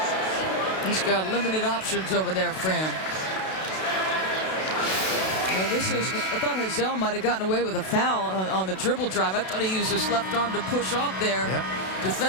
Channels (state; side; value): late; right; 32 ms